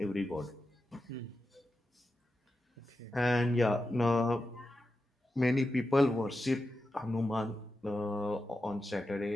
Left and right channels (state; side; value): normal; both; correlation 0.90